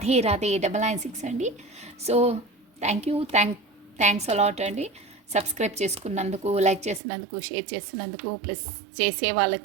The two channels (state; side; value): drops out; left; at 7.0 s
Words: Radhe 996 అండి. సో థ్యాంక్స్ అలాట్ అండి. సబ్స్క్రైబ్ చేసుకున్నందుకు, లైక్ చేసినందుకు, షేర్ చేసినందుకు, ప్లస్ చేసే